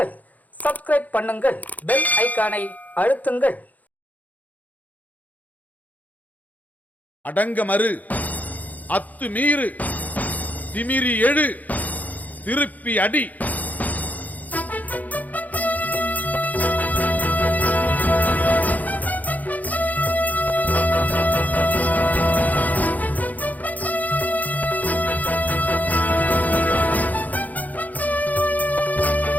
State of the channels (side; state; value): right; late; 0.079 ms